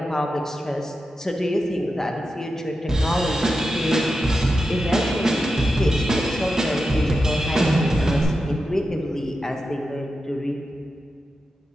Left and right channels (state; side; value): normal; both; correlation 0.90